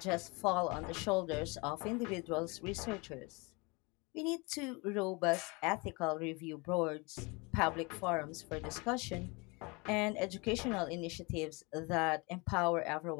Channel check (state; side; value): quieter; right; 27.7 dB